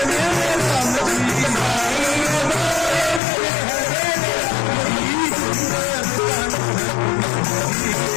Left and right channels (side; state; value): right; drops out; at 3.2 s